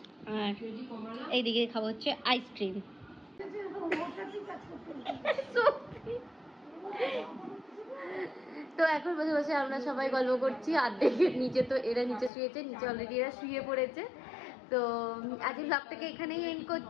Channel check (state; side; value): drops out; right; at 12.3 s